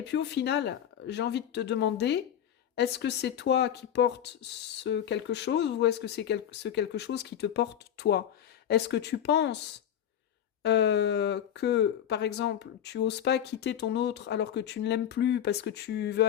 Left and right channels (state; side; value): quieter; right; 9.9 dB